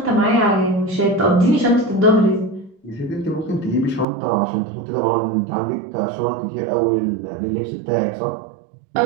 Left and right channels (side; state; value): left; drops out; at 4.0 s